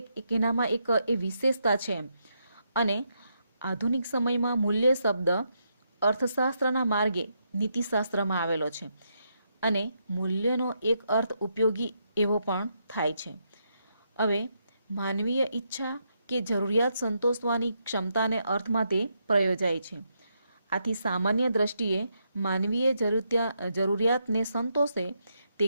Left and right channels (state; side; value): inverted; both; correlation -0.80